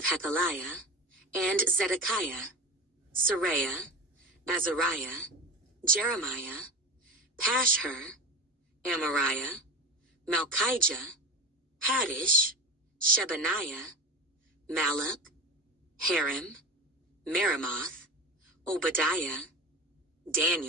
Hakaliah, and Zedekiah, Seraiah, Azariah, Jeremiah, Pashhur, Amariah, Malchijah, Haddish, Shebaniah, Malach, Harim, Meremoth, Obadiah,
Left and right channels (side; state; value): both; normal; correlation 0.29